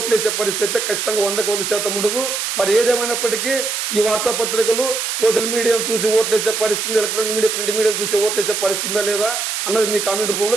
వేసే పరిస్థితి అయితే ఖచ్చితంగా 100% ఉండదు. మరి ఏదేమైనప్పటికీ ఈ వార్తాపత్రికలు సోషల్ మీడియాను చూసి ఓట్లు వేసే పరిస్థితి, ఎలక్ట్రానిక్ మీడియా, ప్రింట్ మీడియాను చూసి ఓట్లు వేసే పరిస్థితి ఉందా లేదా అన్నది మీ కామెంట్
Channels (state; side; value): noise; right; hiss, 2 dB below the sound